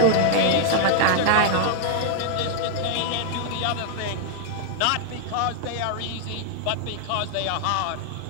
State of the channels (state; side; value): different; both; correlation -0.01